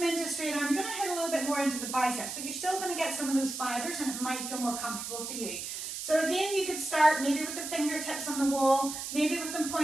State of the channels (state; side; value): noise; right; hiss, 6 dB below the sound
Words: into a straight arm, you're going to hit a little bit more into the biceps, but you're still going to get some of those fibers and it might feel more comfortable for you. So again, you could start maybe with the fingertips on the wall, maybe with them